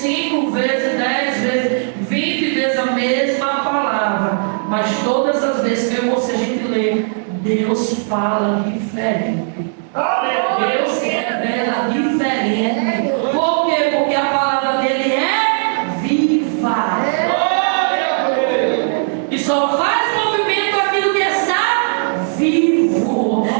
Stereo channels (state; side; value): silent; left; digital silence